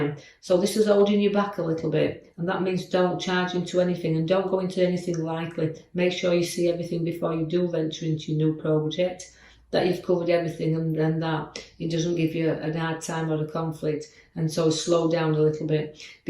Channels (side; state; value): both; identical; correlation 1.00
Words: So this is holding you back a little bit, and that means don't charge into anything and don't go into anything likely. Make sure you see everything before you do venture into your new project, that you've covered everything, and that it doesn't give you a hard time or a conflict, and so slow down a little bit,